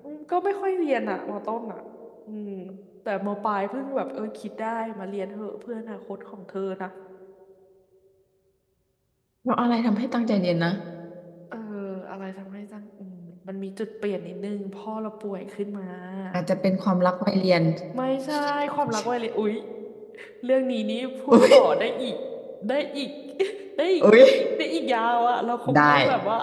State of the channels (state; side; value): identical; both; correlation 1.00